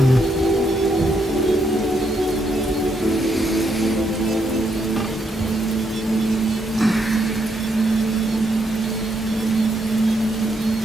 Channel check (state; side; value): normal; both; correlation 0.77